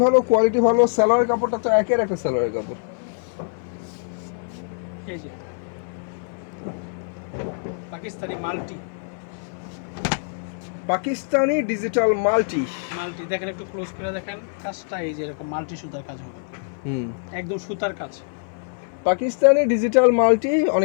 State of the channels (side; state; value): right; silent; 58 dB below the other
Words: ভালো, কোয়ালিটি ভালো, সালোয়ারের কাপড়টা তো একের একটা সালোয়ারের কাপড়। এই যে Pakistani multi, Pakistani digital multi. Multi দেখেন, একটু ক্লোজ করে দেখেন কাজটা। এই যে এরকম মাল্টি সুতার কাজ হবে, একদম সুতার কাজ। পাকিস্তানি ডিজিটাল মাল্টি,